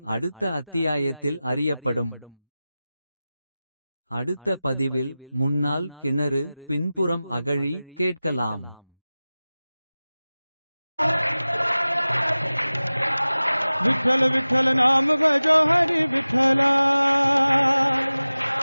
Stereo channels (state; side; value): inverted; both; correlation -0.97